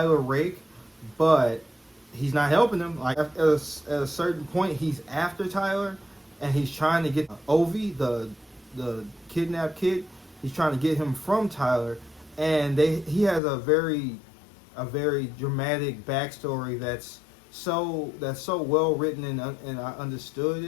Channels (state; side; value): drops out; right; at 13.4 s